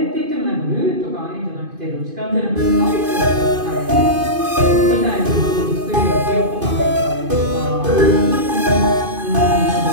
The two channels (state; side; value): late; left; 2.5 ms